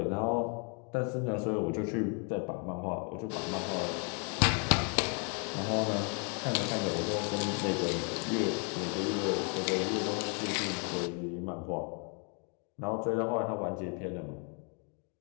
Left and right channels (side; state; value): right; quieter; 38.3 dB